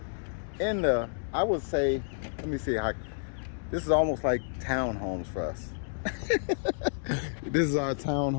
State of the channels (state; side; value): silent; right; digital silence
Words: in the, I would say, let me see how, this is almost like townhomes for us. This is our